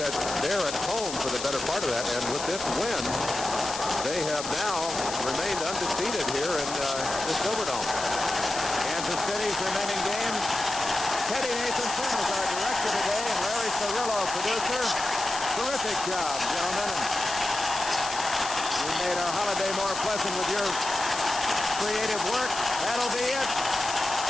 they're at home for the better part of that, and with this win, they have now remained undefeated here in the Silverdome. Kansas City's remaining games. Teddy Nathanson is our director today, and Larry Cirillo, producer. Terrific job, gentlemen. And you made our holiday more pleasant with your creative work. That'll be it.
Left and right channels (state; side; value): noise; left; hiss, 7 dB below the sound